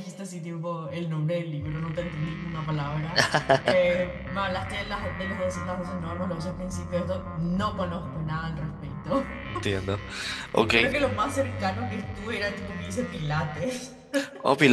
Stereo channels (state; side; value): identical; both; correlation 1.00